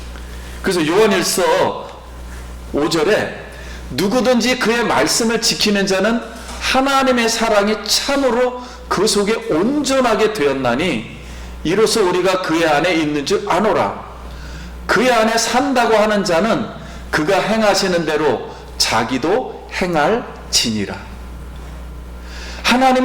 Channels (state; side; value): identical; both; correlation 1.00